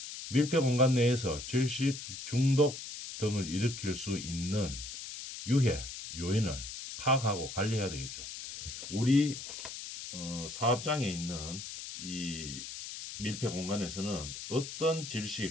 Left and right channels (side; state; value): left; noise; hiss, 9 dB below the sound